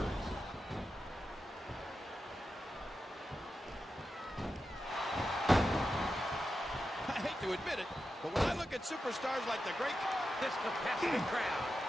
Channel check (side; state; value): both; normal; correlation 0.90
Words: I hate to admit it, but when I look at superstars like the great... This capacity crowd